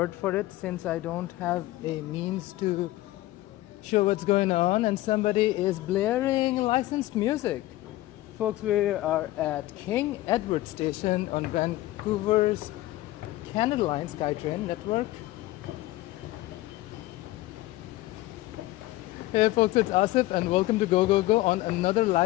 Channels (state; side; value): quieter; right; 17.2 dB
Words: for it since I don't have a means to show what's going on and somebody is blaring licensed music. Folks, we are at King Edward Station on Vancouver's Canada Line SkyTrain network. Hey folks, it's Asif and welcome to Go Go Go on another